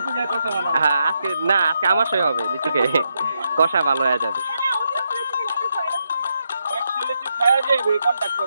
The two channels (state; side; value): inverted; both; correlation -0.81